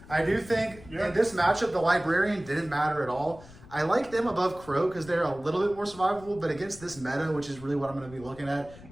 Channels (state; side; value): noise; left; rumble, 19 dB below the sound